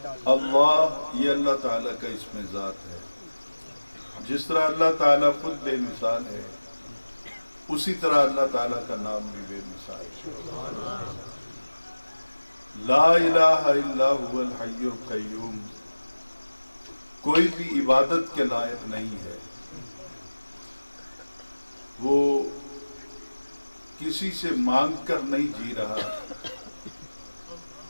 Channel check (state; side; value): inverted; both; correlation -1.00